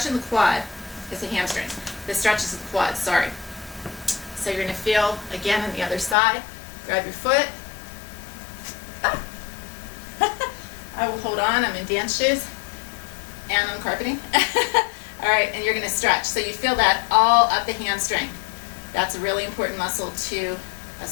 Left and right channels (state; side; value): drops out; right; at 6.2 s